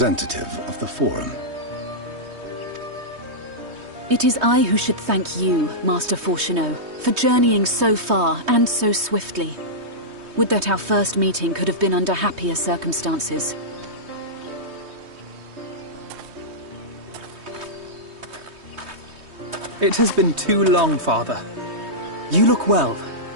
of the Forum. It is I who should thank you, Master Fortuno, for journeying so far and so swiftly. Would that our first meeting could have been under happier circumstances. It has been too long, Father. You look well.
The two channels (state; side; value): late; left; 3.2 ms